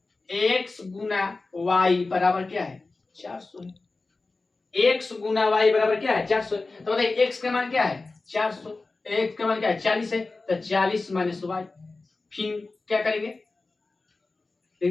x गुना y बराबर क्या है 400 है। x गुना y बराबर क्या है 400। तो बताइए x का मान क्या है 400, x का मान क्या है 40 है, तो 40 माइनस y। फिर क्या करेंगे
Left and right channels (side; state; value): right; quieter; 3.6 dB